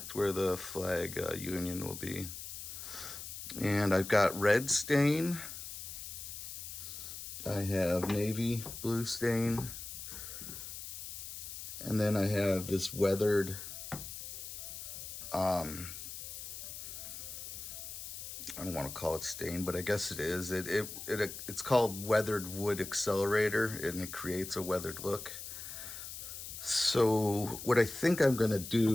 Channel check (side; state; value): left; noise; hiss, 9 dB below the sound